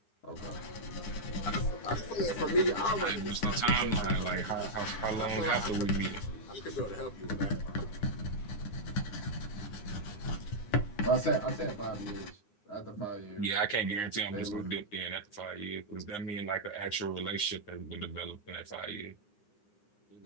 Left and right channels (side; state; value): right; late; 9.7 ms